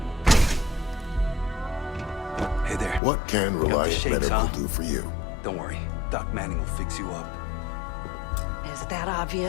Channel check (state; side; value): drops out; right; at 3.0 s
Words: Hey there. What can Reliant Medical do for you? Don't worry. Doc Manning will fix you up. Is that